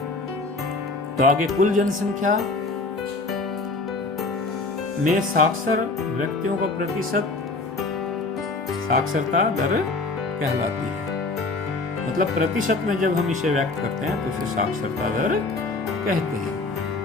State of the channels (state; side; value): quieter; right; 3.5 dB